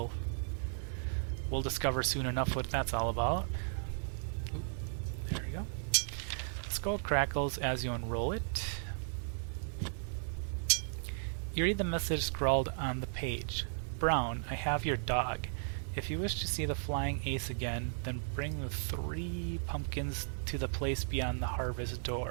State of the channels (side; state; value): left; silent; digital silence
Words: discover soon enough what that's all about. Ooh, there we go. The skull crackles as you unroll it. You read the message scrawled on the page. Brown, I have your dog. If you wish to see the flying ace again, then bring the 3 pumpkins to the place beyond the harvest